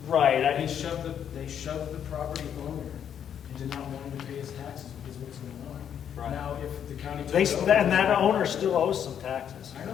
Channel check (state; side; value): quieter; right; 8.8 dB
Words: right. They shoved the property owner into not wanting to pay his taxes because of what's going on. Right. Now, if the county They, took it over, and that owner still owes some taxes. I know